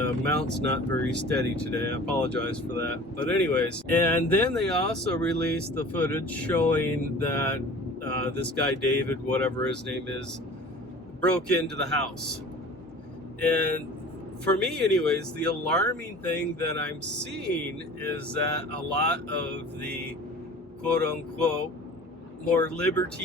mount's not very steady today. I apologize for that. But anyways, and then they also released the footage showing that this guy David, whatever his name is, broke into the house. And for me anyways, the alarming thing that I'm seeing is that a lot of the quote-unquote more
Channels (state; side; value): normal; both; correlation 0.43